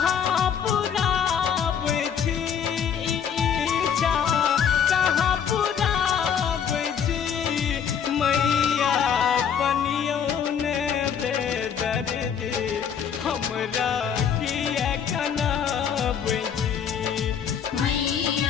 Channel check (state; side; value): quieter; right; 7.8 dB